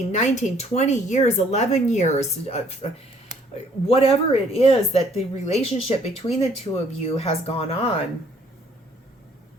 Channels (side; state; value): both; normal; correlation 0.62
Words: 19, 20 years, 11 years, whatever it is that the relationship between the two of you has gone on.